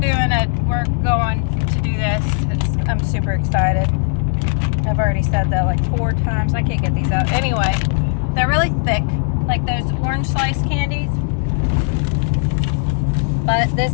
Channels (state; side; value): silent; right; 58 dB below the other